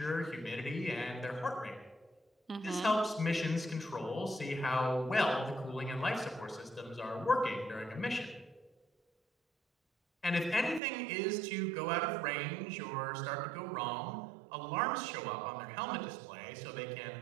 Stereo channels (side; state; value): left; drops out; at 10.8 s